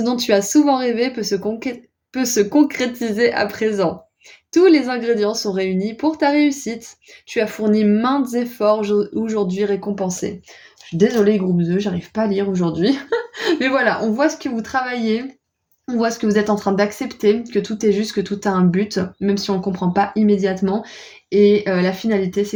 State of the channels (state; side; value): identical; both; correlation 1.00